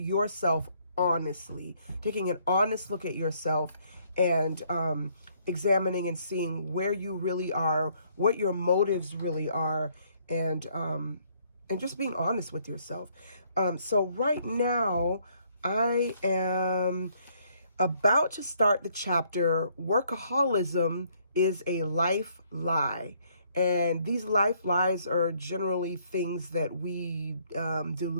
honestly, taking an honest look at yourself and examining and seeing where you really are, what your motives really are, and just being honest with yourself. So right now I am about to start the chapter, Workaholism is a Life Lie. And these life lies are generally things that we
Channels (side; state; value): both; inverted; correlation -0.67